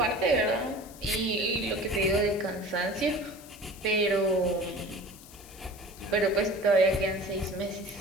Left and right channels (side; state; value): left; noise; hiss, 20 dB below the sound